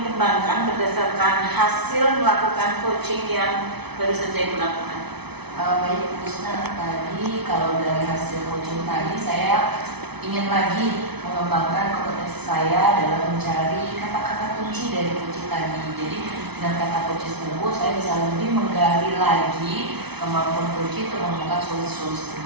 kembangkan berdasarkan hasil melakukan coaching yang baru saja Ibu lakukan? Baik Bu Usna, tadi kalau dari hasil coaching tadi saya ingin lagi mengembangkan kompetensi saya dalam mencari kata-kata kunci dari coaching tadi. Jadi dengan kata kunci tersebut saya bisa lebih menggali lagi kemampuan coach untuk menemukan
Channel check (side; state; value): left; late; 0.99 ms